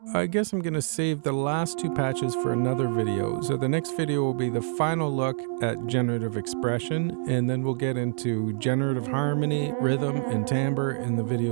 I guess I'm going to save the last two patches for another video. So the next video will be the final look at generative expression, and then we'll get into generative harmony, rhythm, and timbre in the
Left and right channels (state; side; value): silent; left; digital silence